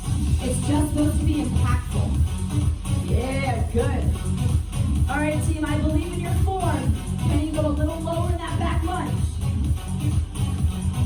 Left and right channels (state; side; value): identical; both; correlation 1.00